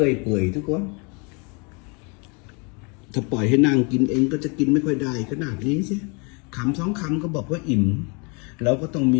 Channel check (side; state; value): right; quieter; 32.4 dB